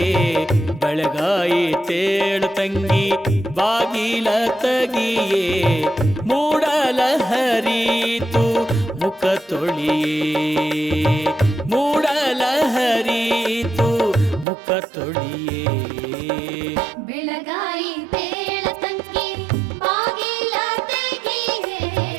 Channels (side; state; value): left; drops out; at 14.5 s